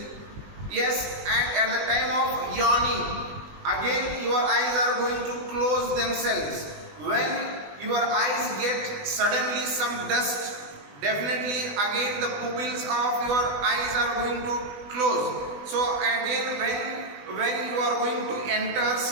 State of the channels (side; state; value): left; late; 20 ms